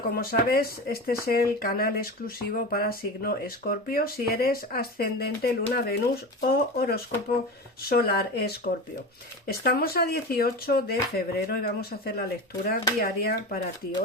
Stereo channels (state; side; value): normal; both; correlation 0.26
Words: como sabes, este es el canal exclusivo para signo Escorpio, si eres ascendente Luna Venus o horóscopo solar Escorpio. Estamos a 18 de febrero y vamos a hacer la lectura diaria para ti.